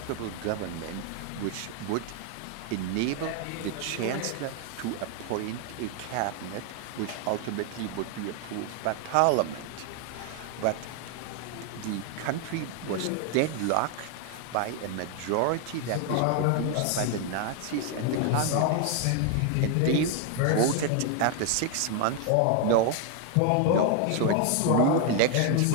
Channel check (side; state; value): both; different; correlation 0.00